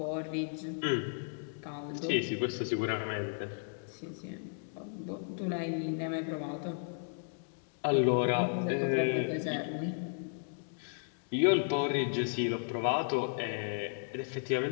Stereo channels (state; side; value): silent; right; digital silence